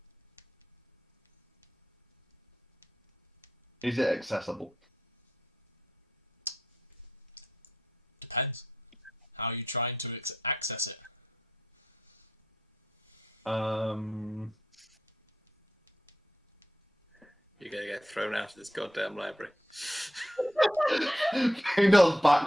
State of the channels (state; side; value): normal; both; correlation 0.82